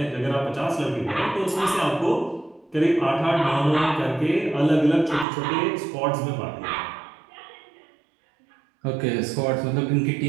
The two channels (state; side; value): drops out; left; at 5.2 s